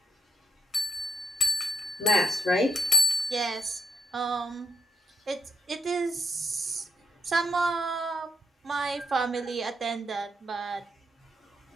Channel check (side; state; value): both; normal; correlation 0.68